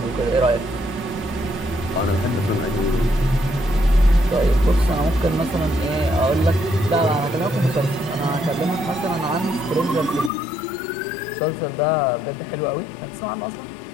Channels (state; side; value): drops out; right; at 10.3 s